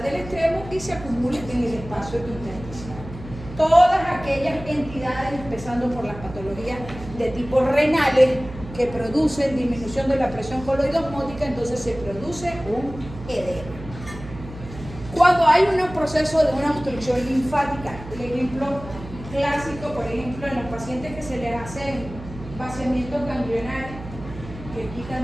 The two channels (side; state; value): right; noise; hum, 13 dB below the sound